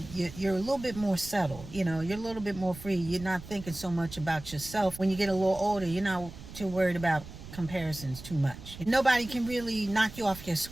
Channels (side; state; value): right; noise; rumble, 14 dB below the sound